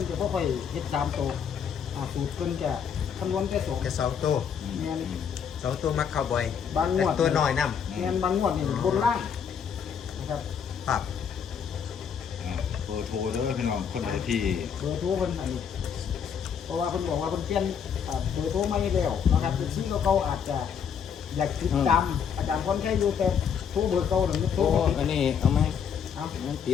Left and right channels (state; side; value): quieter; right; 7.4 dB